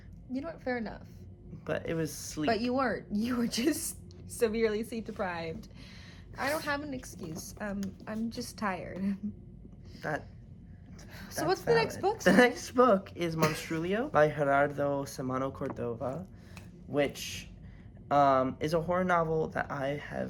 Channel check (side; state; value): both; identical; correlation 1.00